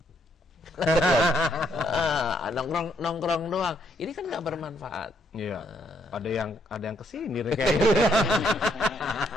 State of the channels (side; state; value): both; normal; correlation 0.71